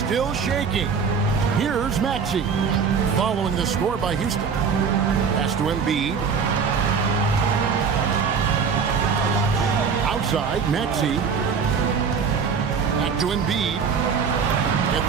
shaking. Here's Maxey. Following the score by Houston. Pass to Embiid. outside. Maxey. Back to Embiid. At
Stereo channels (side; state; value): left; quieter; 6.0 dB